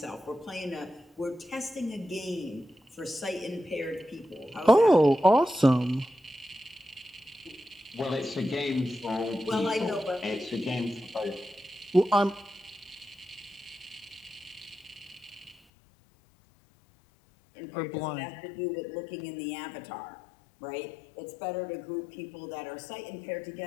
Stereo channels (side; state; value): right; drops out; at 15.6 s